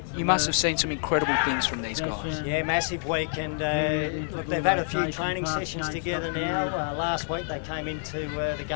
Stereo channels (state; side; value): silent; right; digital silence